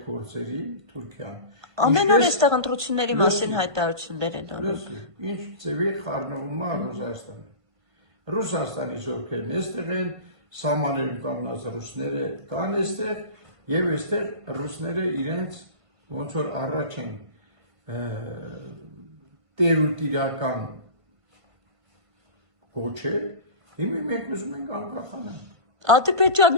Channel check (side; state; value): left; late; 1.5 ms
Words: գործերին, Թուրքիան։ Ամեն օր այստեղ ընտրությունների մասին հայտարարություններ են անում։ Ինչ ձևի խառնվում է Ռուսաստանը։ Ռուսաստանի զորքերն այստեղ են, սահմաններում կանգնած ռուսները կան այստեղ եւ այստեղ ռուսները իրենց ոնց որ առաջ են տերուտիրական կոչել, հիմա մենք ուզում ենք անկախանալ։